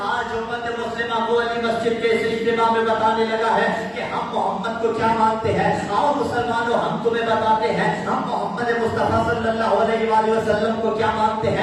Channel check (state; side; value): identical; both; correlation 1.00